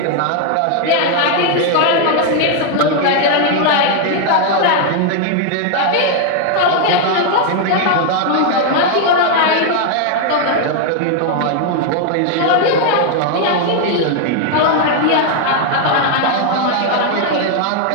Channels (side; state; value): both; different; correlation 0.00